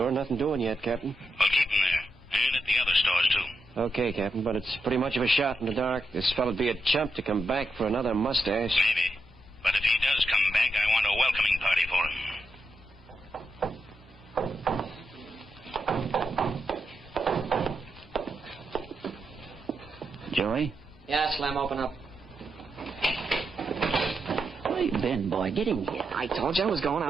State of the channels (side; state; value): both; normal; correlation 0.85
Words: Nothing doing yet, Captain. Well, keep them there. And at the other stores, too. Okay, Captain, but it's pretty much of a shot in the dark. This fellow'd be a chump to come back for another mustache. Maybe. But if he does come back, I want a welcoming party for him. Joey? Yeah, Slim, open up. Where you been, boy? Get in here. I told you I was going